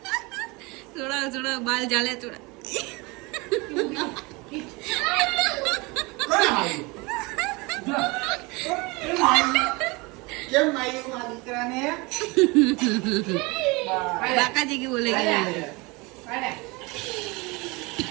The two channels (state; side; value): quieter; left; 25.8 dB